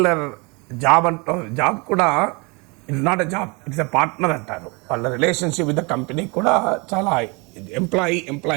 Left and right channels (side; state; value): left; quieter; 29.1 dB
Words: జాబ్ కూడా it's not a job, it's a partner అంటారు. వాళ్ళ రిలేషన్షిప్ విత్ ద కంపెనీ కూడా చాలా